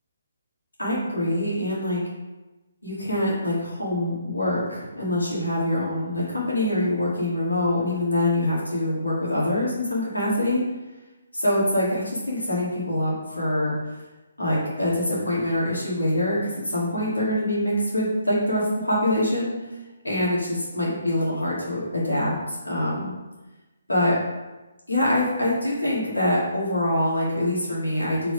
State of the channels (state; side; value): inverted; both; correlation -0.67